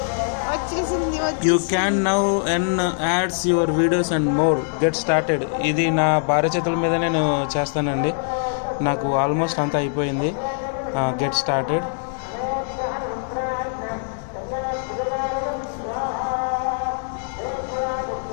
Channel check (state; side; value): silent; right; digital silence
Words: You can now earn ads your videos and more. Get started. ఇది నా భార్య చేతుల మీద నేను చేస్తానండి. నాకు ఆల్మోస్ట్ అంతా అయిపోయింది. Get started.